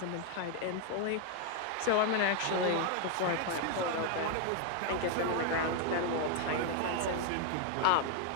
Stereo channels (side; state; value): both; different; correlation 0.01